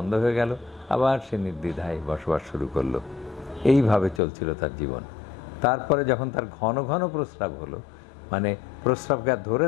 হয়ে গেল, আবার সে নির্দ্বিধায় বসবাস শুরু করলো। এইভাবে চলছিল তার জীবন। তারপরে যখন তার ঘন ঘন প্রস্রাব হলো, মানে প্রস্রাবকে আর ধরে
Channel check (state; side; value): drops out; right; at 4.2 s